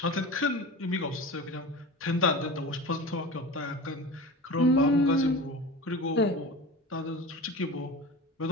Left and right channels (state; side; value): normal; both; correlation 0.32